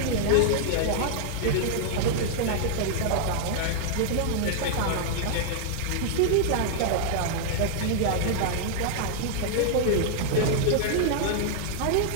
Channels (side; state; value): both; different; correlation -0.01